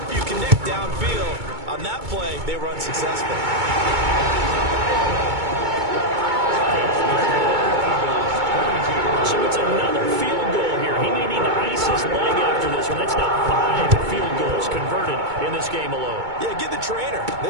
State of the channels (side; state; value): left; late; 2.2 ms